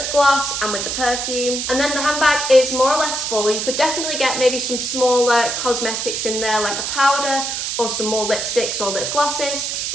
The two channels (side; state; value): right; noise; hiss, 2 dB below the sound